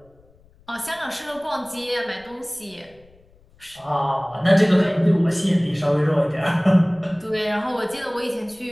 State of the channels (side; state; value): left; noise; rumble, 30 dB below the sound